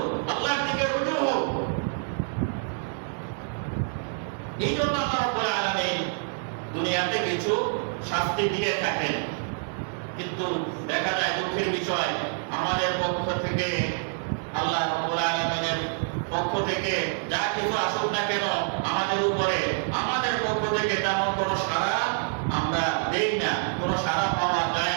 আল্লাহর দিকে রুজু হোক। এই জন্য আল্লাহ রাব্বুল আলামিন দুনিয়াতে কিছু শাস্তি দিয়ে থাকেন। কিন্তু দেখা যায় দুঃখের বিষয়, আমাদের পক্ষ থেকে আল্লাহ রাব্বুল আলামিনের পক্ষ থেকে যা কিছু আসুক না কেন আমাদের উপরে, আমাদের পক্ষ থেকে তেমন কোনো সাড়া আমরা দেই না, কোনো সাড়া পাওয়া যায়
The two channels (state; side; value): silent; left; 60 dB below the other